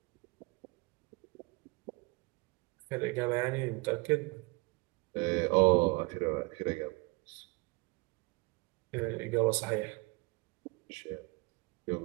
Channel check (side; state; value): left; quieter; 26.2 dB